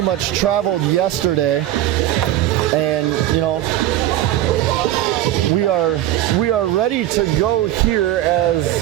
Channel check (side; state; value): left; quieter; 13.5 dB